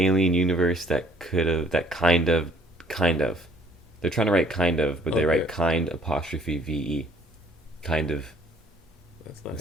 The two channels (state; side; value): normal; both; correlation 0.59